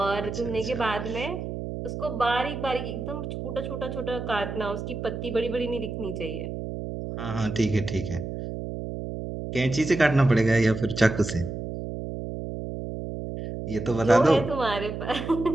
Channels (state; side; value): noise; right; hum, 6 dB below the sound